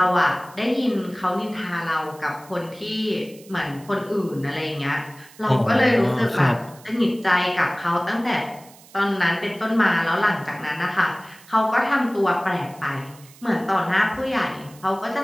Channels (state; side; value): noise; right; hiss, 23 dB below the sound